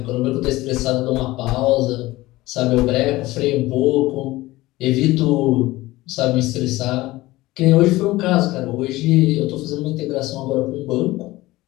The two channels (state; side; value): quieter; right; 18.6 dB